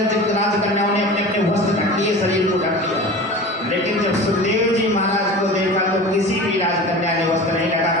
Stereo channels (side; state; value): both; normal; correlation 0.35